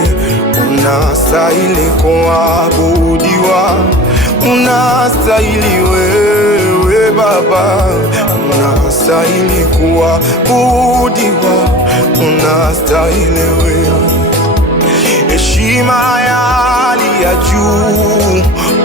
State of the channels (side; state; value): both; normal; correlation 0.36